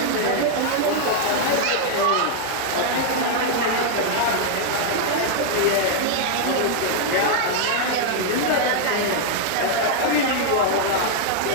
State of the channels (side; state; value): both; different; correlation 0.00